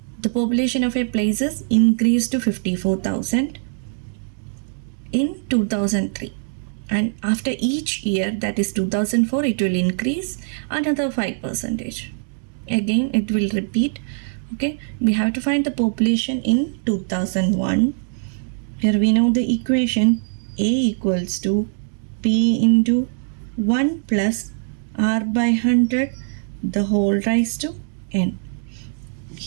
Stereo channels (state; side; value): silent; left; digital silence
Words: the population of a place is increased to 54,000 in 2003. And after each year, that is 2004, it will increase another 5%. Again, it will repeat. Okay, we have to find the population in 2001. Here we know the equation A equals to P into 1 plus R by 100 the whole raised to N.